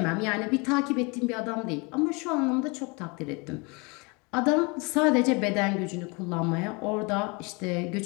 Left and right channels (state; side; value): quieter; right; 29.2 dB